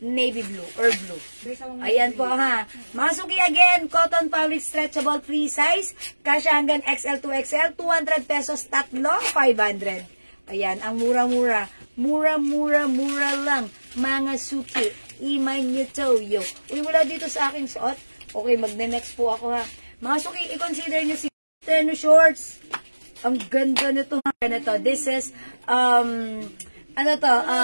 navy blue or blue. Ayan po, ha. Mga suki, again, cotton fabric stretchable free size. Kasya hanggang XL to XL. 200 pesos tatlo, 500. Ayan, ang mura-mura. Mura lang. Mga suki, imay nyo to, yo. Uy, wala dito sa aking suot. Okay, magne-next po ako, ha. Mga suki, i-consider nyo si tennis shorts. Ang ganda nito. This is, Ang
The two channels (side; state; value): both; inverted; correlation -1.00